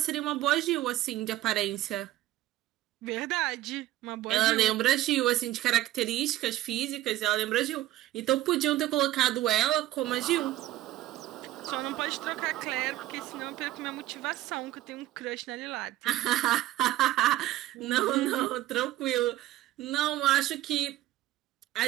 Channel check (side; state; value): left; quieter; 15.0 dB